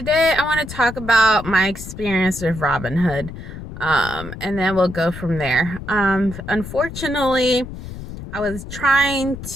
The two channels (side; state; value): left; noise; rumble, 11 dB below the sound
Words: I want to talk about my experience with Robinhood, and then we'll go from there. Unfortunately, I was trying